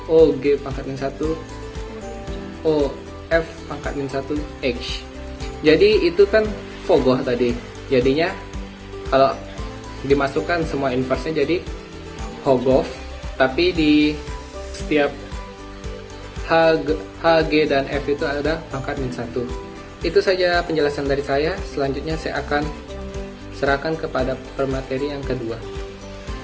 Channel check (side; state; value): both; identical; correlation 1.00